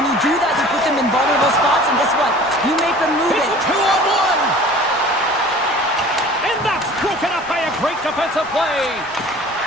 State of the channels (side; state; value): right; noise; rumble, 26 dB below the sound